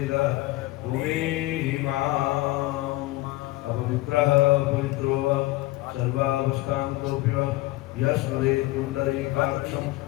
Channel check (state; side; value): quieter; right; 19.1 dB